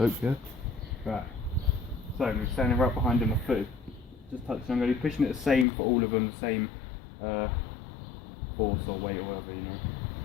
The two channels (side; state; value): right; drops out; at 5.7 s